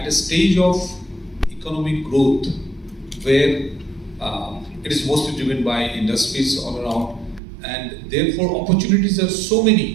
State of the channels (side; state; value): left; drops out; at 7.4 s